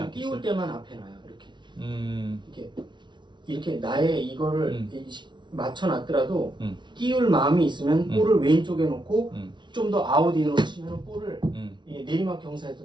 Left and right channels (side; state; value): left; late; 0.23 ms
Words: 않겠어요? 띄울 때만 앞에 놔요. 이렇게. 이렇게 나의 이거를 맞춰놨더라도 띄울 마음이 있으면 볼을 왼쪽에 놓고 좀 더 아웃인으로 치면 볼을 이게 내리막